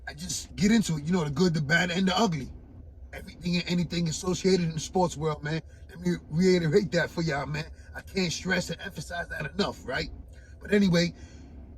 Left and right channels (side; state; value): both; identical; correlation 1.00